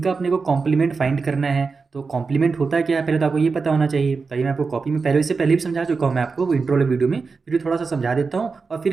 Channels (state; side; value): quieter; left; 4.6 dB